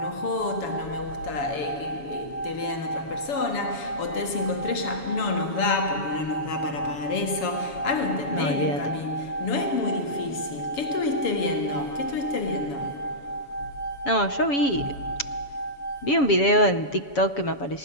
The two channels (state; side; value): late; right; 7.1 ms